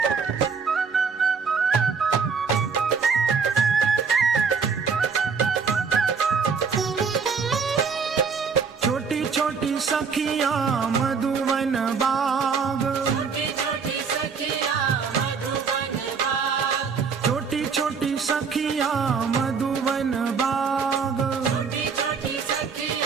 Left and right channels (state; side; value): quieter; left; 5.7 dB